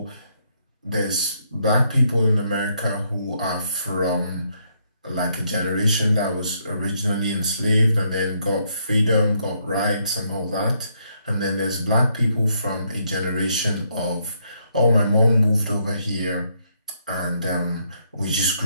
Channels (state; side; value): inverted; both; correlation -0.74